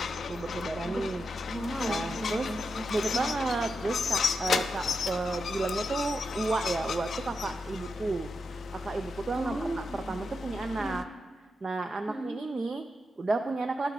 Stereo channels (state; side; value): normal; both; correlation 0.86